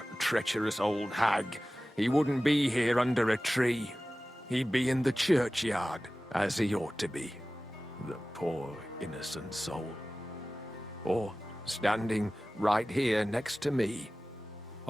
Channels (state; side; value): normal; both; correlation 0.96